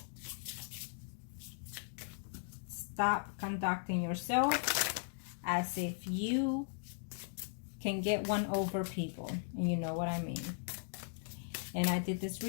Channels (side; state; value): right; silent; digital silence